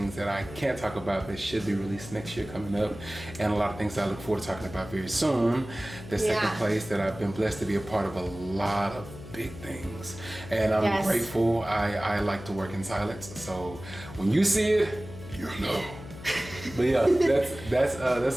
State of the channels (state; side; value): noise; left; hum, 14 dB below the sound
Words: that I can't talk about that should be released next year coming up, and a lot of things that I look forward to talking about very soon. That's taking place, that I've been blessed to be a part of a lot of big things, and I'm grateful. I like to work in silence, so when you see it, you'll know. But yeah, that's